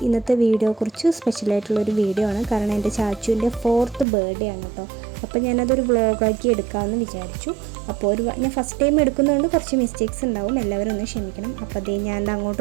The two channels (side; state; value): left; drops out; at 4.0 s